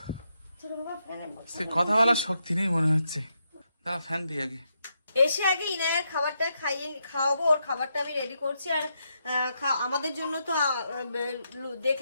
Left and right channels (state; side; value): inverted; both; correlation -0.82